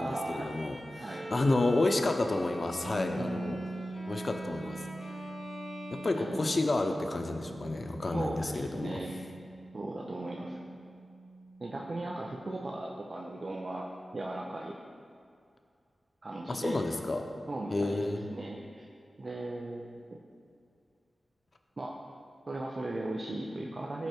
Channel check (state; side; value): normal; both; correlation 0.94